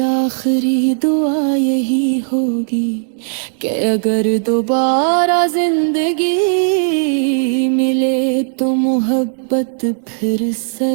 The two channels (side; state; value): left; silent; 69 dB below the other